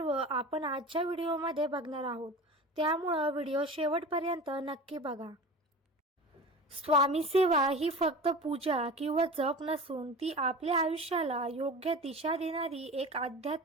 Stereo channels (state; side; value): normal; both; correlation 0.34